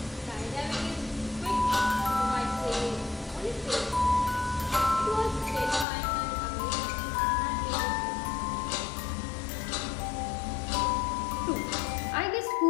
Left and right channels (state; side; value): drops out; right; at 5.9 s